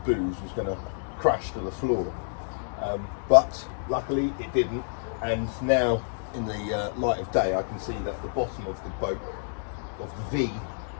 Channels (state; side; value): silent; right; 59 dB below the other